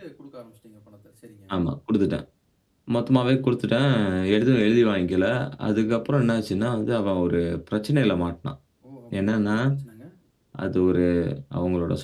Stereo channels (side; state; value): both; identical; correlation 1.00